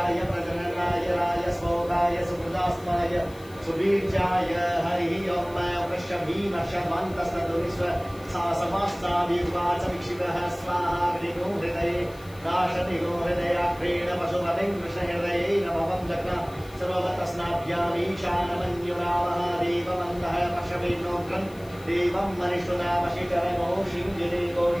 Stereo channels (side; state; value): left; noise; hiss, 24 dB below the sound